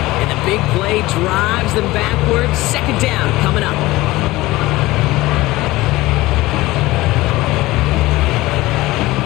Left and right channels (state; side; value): quieter; right; 18.9 dB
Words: And the big play drives them backwards. 2nd down coming up.